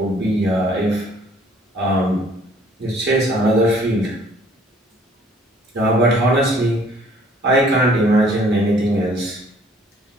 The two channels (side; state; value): both; normal; correlation 0.58